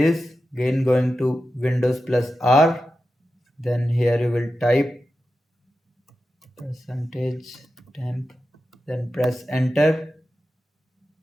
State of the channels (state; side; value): normal; both; correlation 0.91